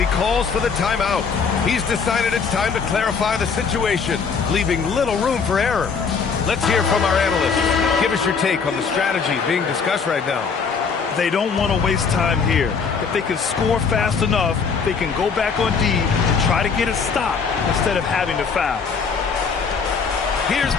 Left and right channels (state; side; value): quieter; right; 5.6 dB